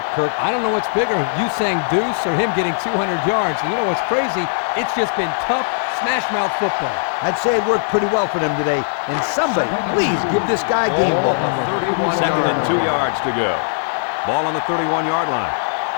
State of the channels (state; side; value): silent; right; 64 dB below the other